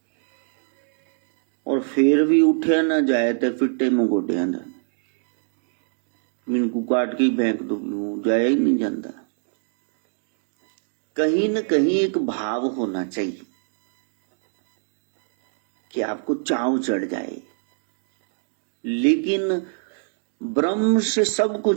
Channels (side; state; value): left; silent; digital silence